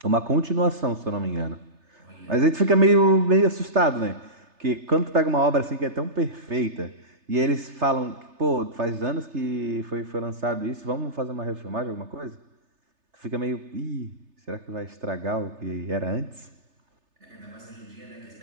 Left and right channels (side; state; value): left; late; 3.3 ms